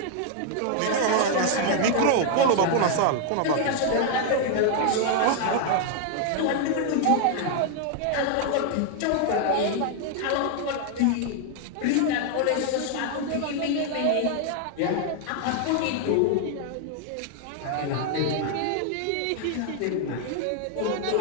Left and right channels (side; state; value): both; different; correlation 0.00